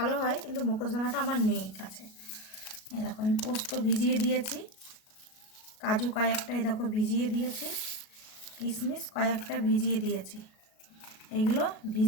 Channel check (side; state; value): right; late; 37 ms